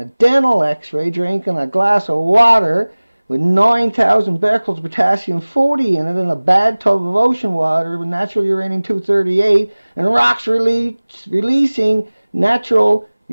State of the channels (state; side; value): inverted; both; correlation -1.00